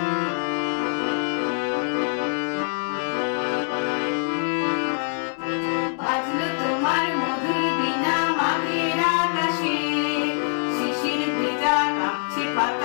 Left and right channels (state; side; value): silent; right; 56 dB below the other